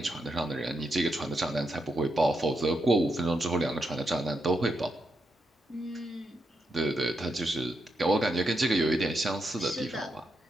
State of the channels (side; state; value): both; normal; correlation 0.83